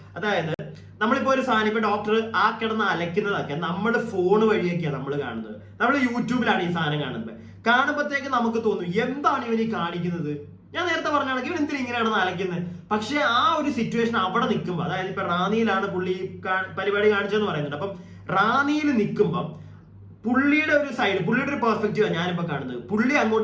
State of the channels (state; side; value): identical; both; correlation 1.00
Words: അതായത് നമ്മളിപ്പോ ഒരു സാധനം ഇപ്പൊ ഡോക്ടർ ആ കിടന്ന് അലക്കുന്നതൊക്കെ നമ്മൾ ഫോൺ വഴിയൊക്കെയാണ് നമ്മൾ കാണുന്നത്. നമ്മൾ യൂട്യൂബിലാണ് ഈ സാധനം കാണുമ്പോഴത്തേക്ക് നമുക്ക് തോന്നും എന്താണ് ഇവൻ ഈ കാണിക്കുന്നത്. ഞാൻ നേരത്തെ പറഞ്ഞാണെങ്കിൽ ഇവൻ എന്തിനാ ഇങ്ങനെയാണ് അലക്കുന്നത്. പക്ഷെ ആ ഒരു സിറ്റുവേഷൻ അവിടെ നിൽക്കുമ്പോൾ, അതായത് ഇപ്പൊ റാന്നിയിലാണ് പുള്ളി പരിപാടി കാണിച്ചതെന്ന് പറയുന്നുണ്ട്. അപ്പം റാന്നിയിൽ നിൽക്കുമ്പം പുള്ളിയുടെ ഒരു സൈഡ്, പുള്ളിയുടെ ഒരു പെർസ്പെക്റ്റീവാണ് ഞാനിപ്പോ കാണുന്നത്. പുള്ളി